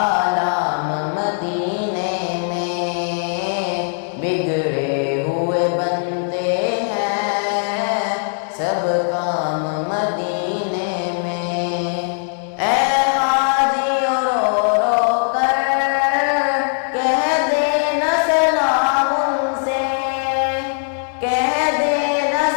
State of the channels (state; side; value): silent; right; 65 dB below the other